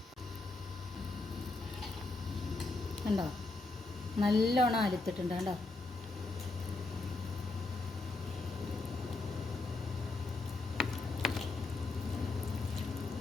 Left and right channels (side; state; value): right; quieter; 3.3 dB